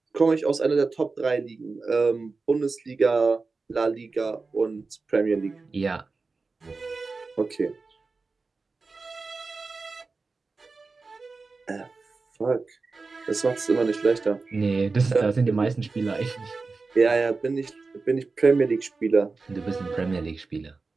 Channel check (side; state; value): left; quieter; 4.1 dB